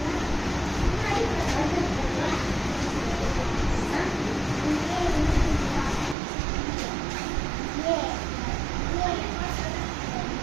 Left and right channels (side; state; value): left; drops out; at 6.2 s